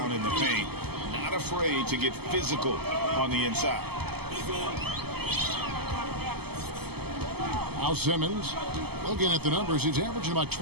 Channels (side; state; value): left; late; 0.96 ms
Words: in the paint. Not afraid to get physical on the inside. Now Simmons, looking at the numbers, he's averaging about